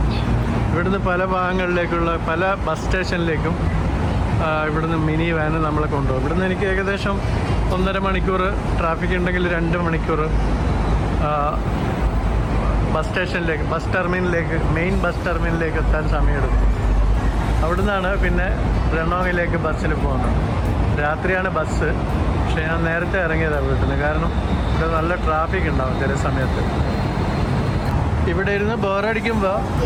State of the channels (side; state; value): both; identical; correlation 1.00